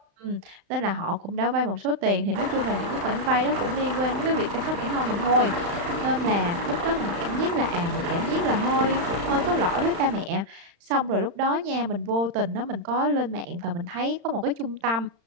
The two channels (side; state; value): left; late; 35 ms